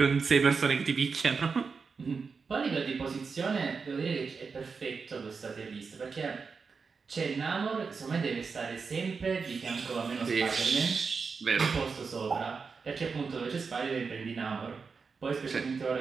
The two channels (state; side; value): quieter; left; 5.1 dB